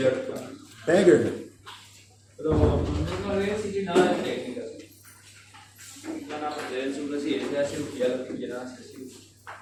Beggar. Pero no voy a decir nada de técnicas. Van a aprender en su residencia de cirugía lo que quieran hacer cirugía.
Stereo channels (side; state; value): both; identical; correlation 1.00